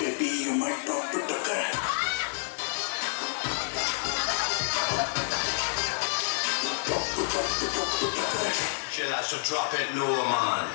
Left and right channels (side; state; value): right; silent; digital silence